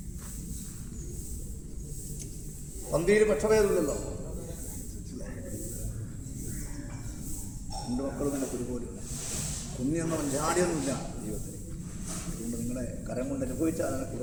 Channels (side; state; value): both; identical; correlation 1.00